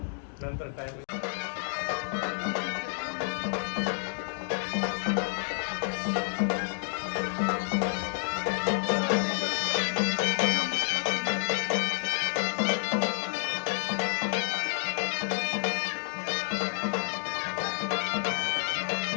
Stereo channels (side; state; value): right; silent; 58 dB below the other